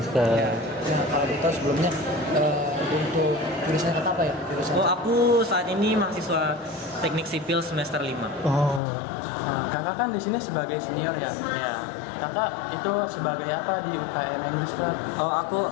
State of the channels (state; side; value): drops out; right; at 8.8 s